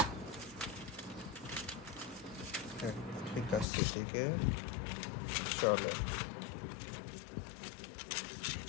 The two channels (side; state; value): right; drops out; at 3.7 s